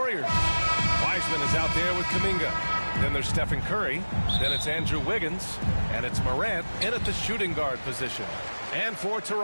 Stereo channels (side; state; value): both; inverted; correlation -1.00